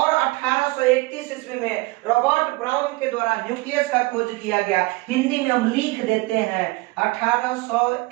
1831 ईस्वी में रॉबर्ट ब्राउन के द्वारा न्यूक्लियस का खोज किया गया। हिंदी में हम लिख देते हैं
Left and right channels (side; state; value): left; quieter; 22.7 dB